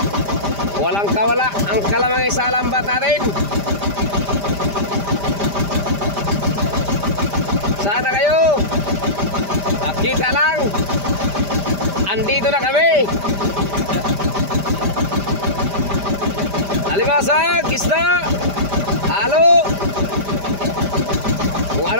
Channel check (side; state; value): left; late; 5.0 ms